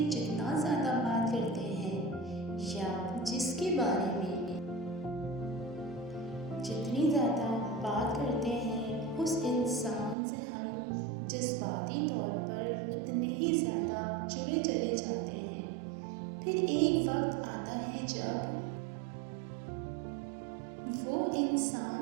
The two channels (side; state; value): left; drops out; at 10.2 s